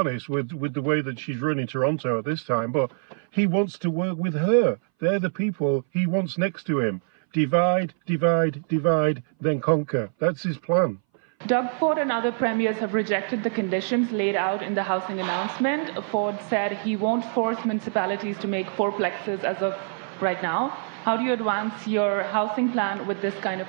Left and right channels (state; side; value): silent; left; 60 dB below the other